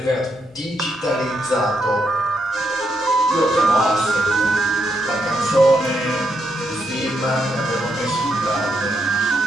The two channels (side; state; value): both; normal; correlation 0.79